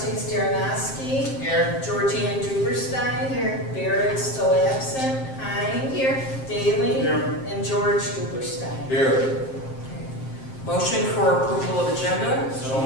Darnowski. Here. Georgianne Duberstein. Here. Barrett still absent. Hein. Here. Daly. Here. And George Duberstein. Here. Motion for approval of agenda. So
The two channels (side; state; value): right; late; 7.7 ms